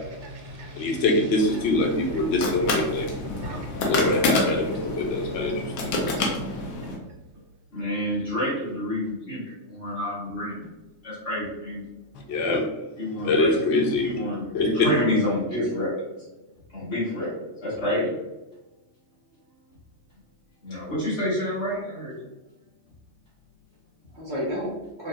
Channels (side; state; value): right; late; 3.9 ms